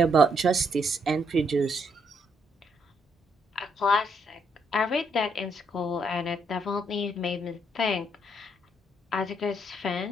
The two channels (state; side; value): normal; both; correlation 0.73